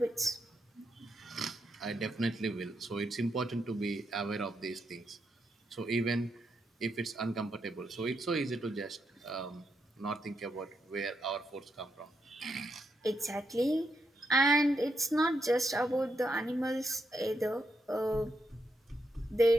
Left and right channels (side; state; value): both; normal; correlation 0.81